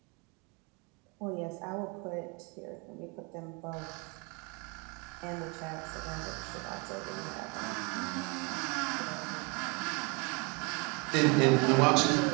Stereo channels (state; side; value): quieter; left; 31.4 dB